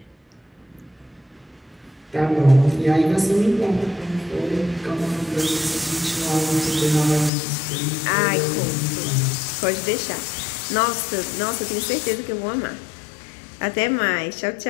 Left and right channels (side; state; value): right; drops out; at 7.3 s